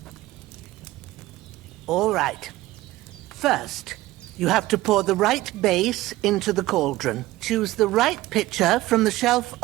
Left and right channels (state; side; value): quieter; left; 17.4 dB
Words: All right. First, you have to pour the right base into the cauldron. Choose the right pitcher from the shelf